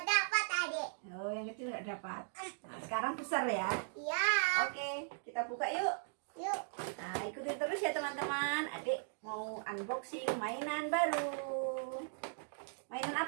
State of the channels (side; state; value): left; silent; digital silence